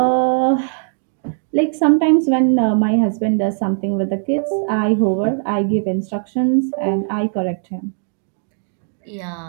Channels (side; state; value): left; silent; 67 dB below the other